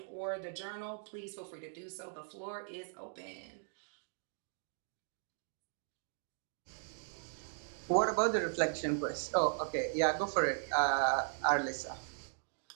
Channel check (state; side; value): silent; left; digital silence